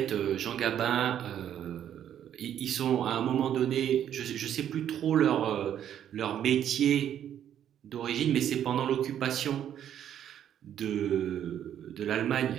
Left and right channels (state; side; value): quieter; left; 10.1 dB